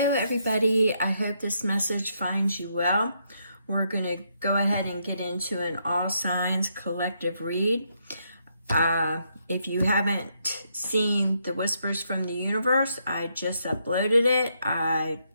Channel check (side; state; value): both; inverted; correlation -0.77